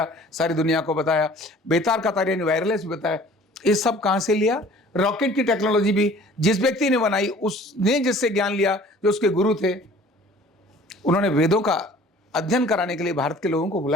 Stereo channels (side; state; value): both; normal; correlation 0.50